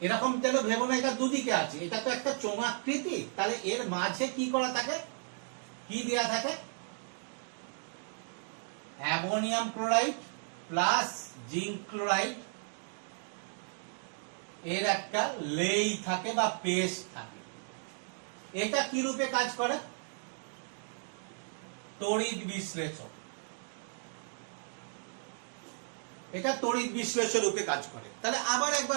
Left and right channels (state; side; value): silent; left; 55 dB below the other